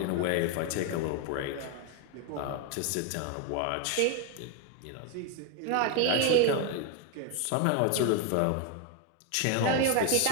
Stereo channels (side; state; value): both; different; correlation 0.01